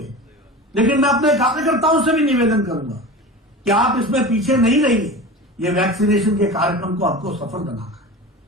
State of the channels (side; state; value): both; normal; correlation 0.32